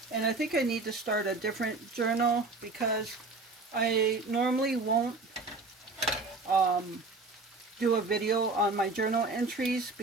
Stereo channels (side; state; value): left; quieter; 3.6 dB